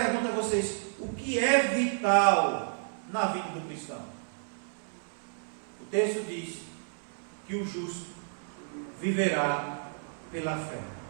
a vocês, o que é vital na vida do cristão? O texto diz que o justo viverá pela fé.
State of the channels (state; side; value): silent; left; 57 dB below the other